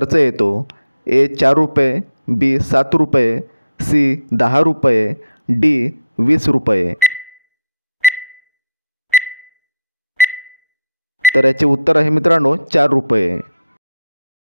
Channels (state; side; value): inverted; both; correlation -0.76